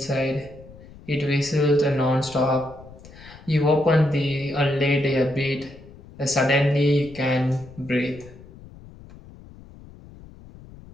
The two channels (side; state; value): left; noise; rumble, 20 dB below the sound